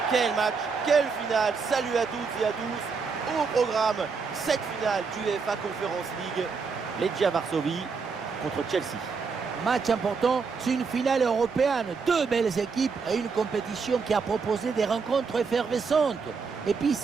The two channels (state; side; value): quieter; left; 5.1 dB